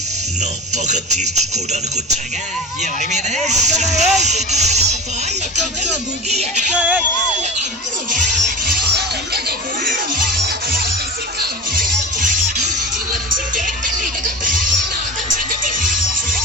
నా పగ తీర్చుకోవడానికి వచ్చాగా. ఎవరి మీద?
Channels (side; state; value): both; normal; correlation 0.32